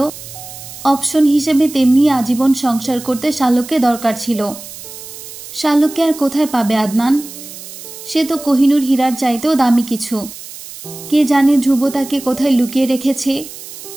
অপশন হিসেবে তেমনি আজীবন সংসার করতে শালুককে দরকার ছিল। শালুককে আর কোথায় পাবে আদনান? সে তো কোহিনূর হীরার চাইতেও দামি কিছু। কে জানে ধ্রুব তাকে কোথায় লুকিয়ে রেখেছে।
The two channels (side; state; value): right; noise; hiss, 14 dB below the sound